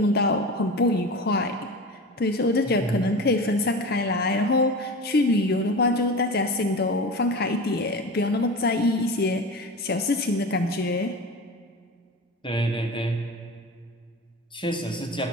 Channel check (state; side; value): normal; both; correlation 0.30